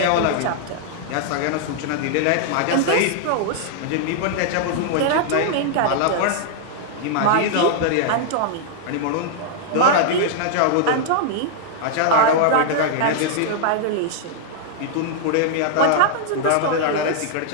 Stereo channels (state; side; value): different; both; correlation -0.01